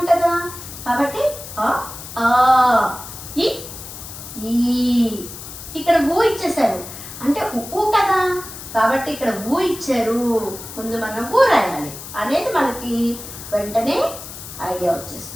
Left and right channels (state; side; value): noise; left; hiss, 12 dB below the sound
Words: కదా, కాబట్టి ఆ ఆ ఇ ఈ. ఇక్కడ ఊ ఇచ్చేసారు అంటే ఊ కదా, కాబట్టి ఇక్కడ ఊ ఇచ్చారు, ముందు మనం ఊ రాయాలి అనేది మనకి వెంటనే ఐడియా